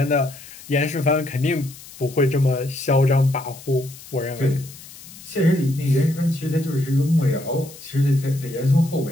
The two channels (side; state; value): left; noise; hiss, 18 dB below the sound